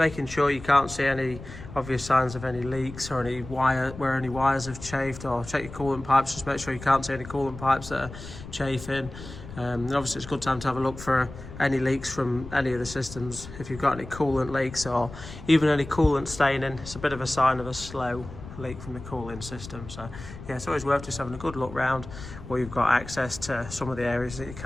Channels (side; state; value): left; noise; rumble, 13 dB below the sound